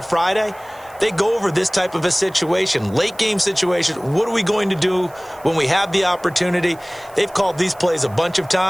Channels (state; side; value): noise; right; hiss, 26 dB below the sound